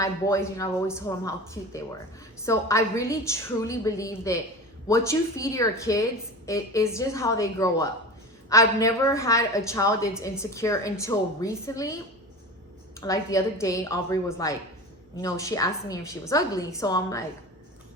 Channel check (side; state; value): both; normal; correlation 0.32